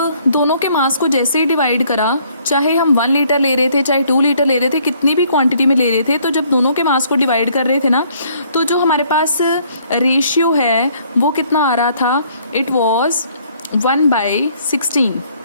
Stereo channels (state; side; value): inverted; both; correlation -0.63